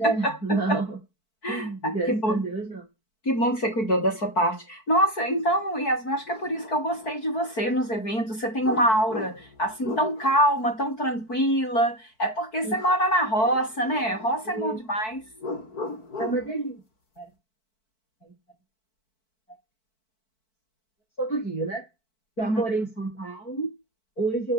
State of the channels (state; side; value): late; right; 4.5 ms